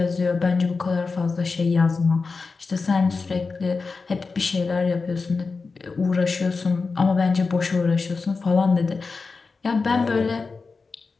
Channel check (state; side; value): quieter; right; 4.4 dB